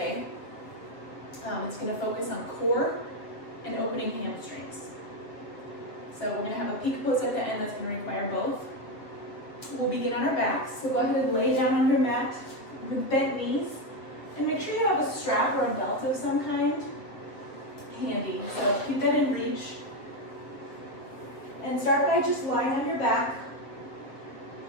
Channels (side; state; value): right; late; 7.7 ms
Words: It's going to focus on core and opening hamstrings. So we're going to have a peak pose at the end that's going to require both. We'll begin on our backs, so go ahead and lay down on your mat with bent knees and make sure you have a strap or a belt of some kind handy. So keep that in reach and start by just lying on your back.